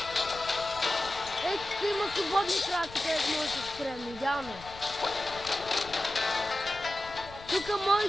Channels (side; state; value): left; noise; rumble, 18 dB below the sound